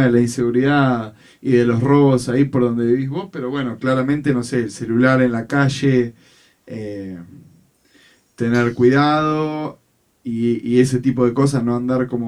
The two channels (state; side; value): identical; both; correlation 1.00